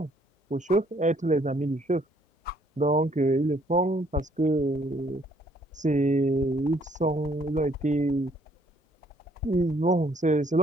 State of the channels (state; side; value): normal; both; correlation 0.64